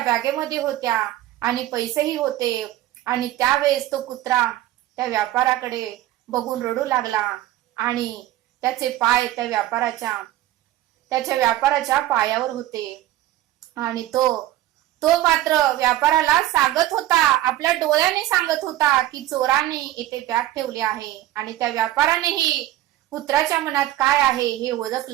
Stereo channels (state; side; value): quieter; left; 14.5 dB